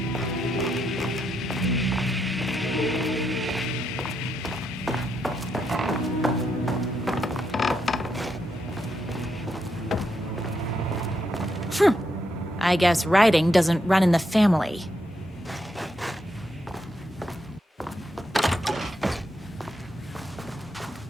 I guess writing doesn't run in the family.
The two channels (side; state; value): both; normal; correlation 0.80